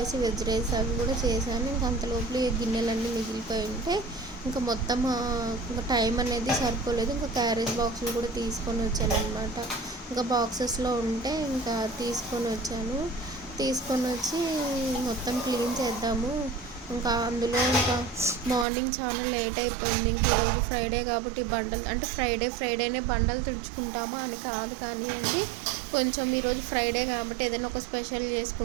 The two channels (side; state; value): left; drops out; at 18.7 s